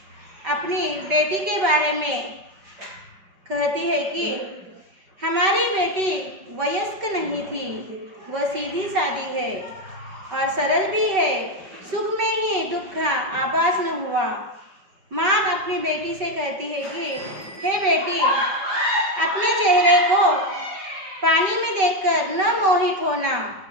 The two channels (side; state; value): left; late; 5.2 ms